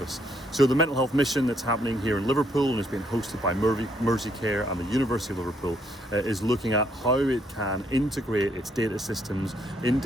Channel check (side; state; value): both; normal; correlation 0.71